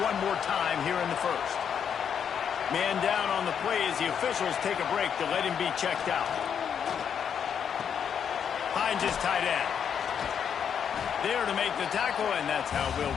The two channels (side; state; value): right; quieter; 7.8 dB